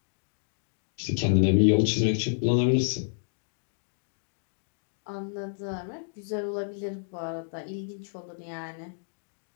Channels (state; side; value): silent; right; digital silence